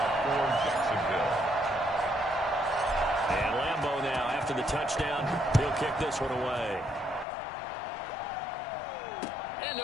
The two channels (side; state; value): right; drops out; at 7.2 s